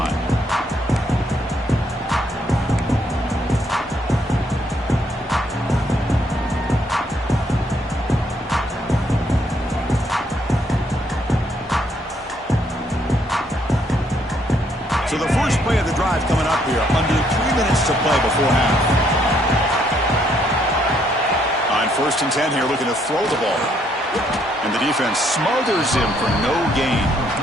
So the first play of the drive coming up here, under 3 minutes to play before half. On 1st and 10 here, looking to throw the ball. And the defense smothers him for no gain.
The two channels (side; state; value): both; normal; correlation 0.70